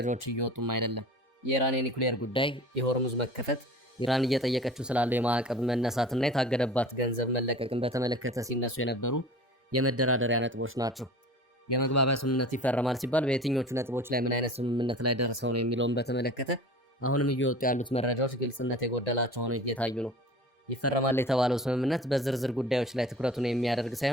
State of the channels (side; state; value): both; normal; correlation 0.41